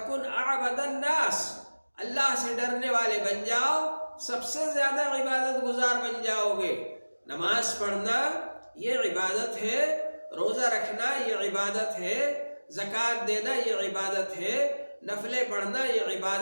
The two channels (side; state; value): both; inverted; correlation -1.00